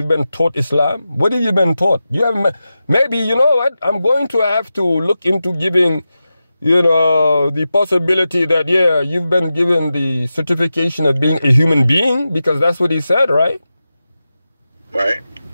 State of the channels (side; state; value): both; inverted; correlation -0.92